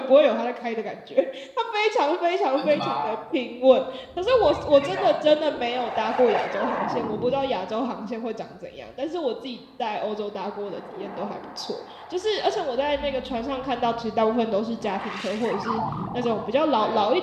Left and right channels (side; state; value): both; identical; correlation 1.00